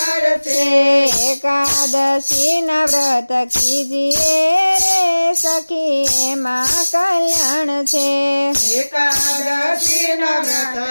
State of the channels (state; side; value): inverted; both; correlation -1.00